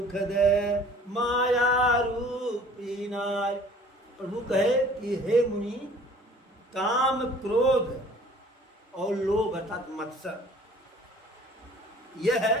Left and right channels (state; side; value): normal; both; correlation 0.51